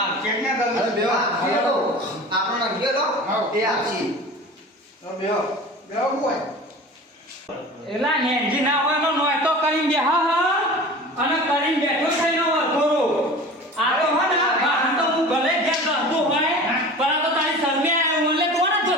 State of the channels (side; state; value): both; normal; correlation 0.38